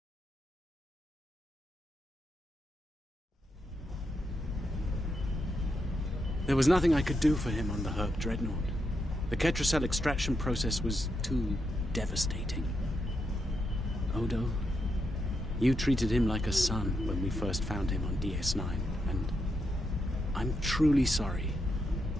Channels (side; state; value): both; normal; correlation 0.83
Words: There was nothing I could do for him on the Herc Dreadnought. The Ketracel extraction process was too devastating. Odo, you treated him like a son when we first found him on DS9, and I'm truly sorry.